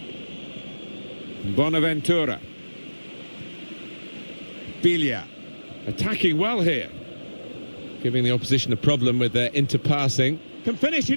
Bonaventura. Biglia. Attacking well here. Giving the opposition a problem with their interpassing. Can finish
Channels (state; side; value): inverted; both; correlation -1.00